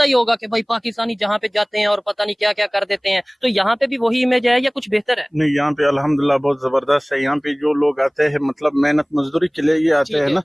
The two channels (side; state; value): both; identical; correlation 1.00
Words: ही होगा कि भाई पाकिस्तानी जहाँ पे जाते हैं और पता नहीं क्या क्या कर देते हैं, तो यहाँ पे भी वही इमेज है या कुछ बेहतर है? नहीं, यहाँ पे अल्हम्दुलिल्लाह बहुत जबरदस्त है। यहाँ पे जो लोग आते हैं, मतलब मेहनत मजदूरी के लिए ये आते हैं ना,